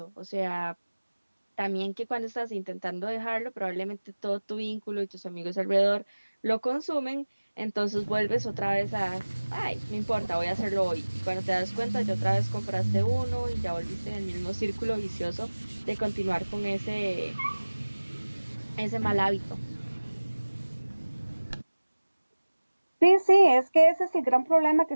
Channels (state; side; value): inverted; both; correlation -1.00